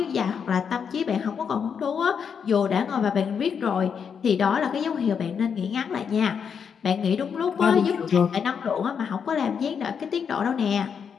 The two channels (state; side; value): quieter; right; 6.9 dB